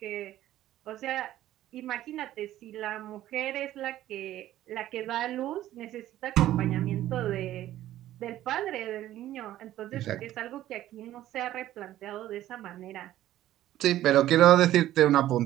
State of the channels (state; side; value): quieter; left; 13.6 dB